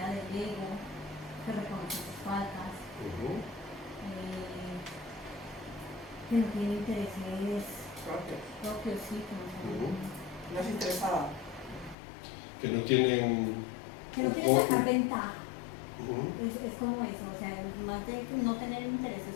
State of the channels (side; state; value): right; drops out; at 12.0 s